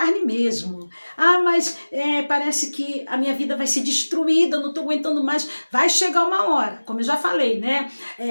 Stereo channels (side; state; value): both; inverted; correlation -1.00